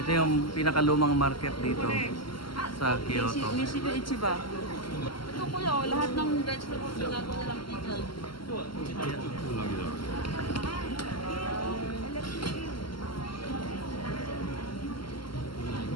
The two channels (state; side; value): late; right; 0.73 ms